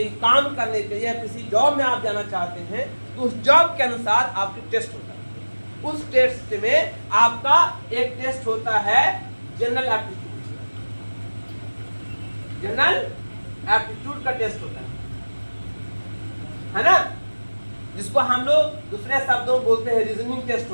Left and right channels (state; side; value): inverted; both; correlation -1.00